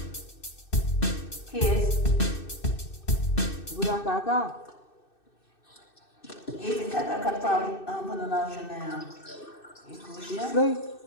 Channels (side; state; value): right; late; 2.6 ms